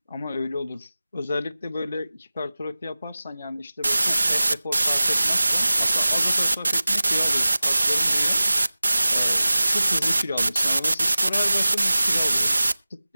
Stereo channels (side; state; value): both; inverted; correlation -0.97